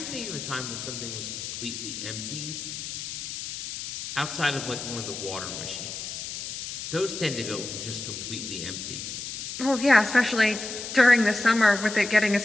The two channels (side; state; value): left; noise; hiss, 7 dB below the sound